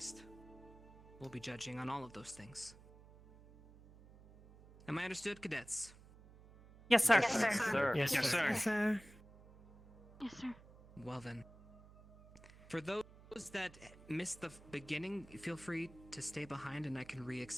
We'll be judging on all of those things. Am I understood, cadets? Yes, sir. Yes, sir. Yes, sir. Yes, sir. Yes, sir. Well then. For those that missed the beginning, feel free to stay behind and I can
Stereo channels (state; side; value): noise; right; hum, 21 dB below the sound